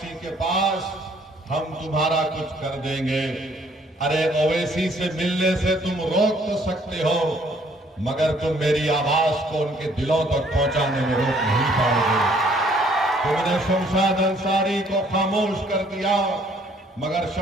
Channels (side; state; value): both; normal; correlation 0.62